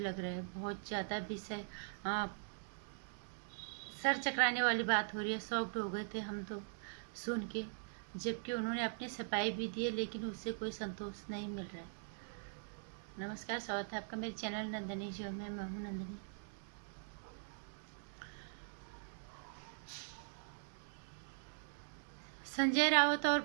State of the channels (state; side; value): silent; left; digital silence